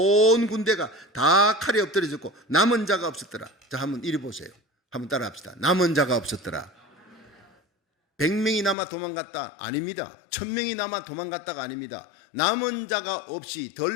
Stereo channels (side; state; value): right; drops out; at 8.8 s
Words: 군대가 다 칼에 엎드려졌고 남은 자가 없었더라. 자, 한번 이리 보세요. 한번 따라 합시다. 남은 자가 없었더라. 100명이 남아 도망갔다? 아닙니다. 1000명이 남아 도망갔다가 아닙니다. 남은 자가 없이